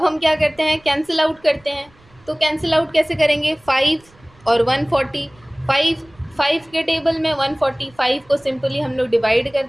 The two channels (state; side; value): noise; right; rumble, 29 dB below the sound